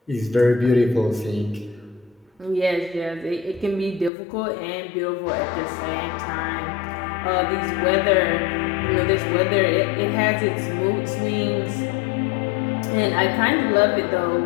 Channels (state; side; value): drops out; right; at 4.1 s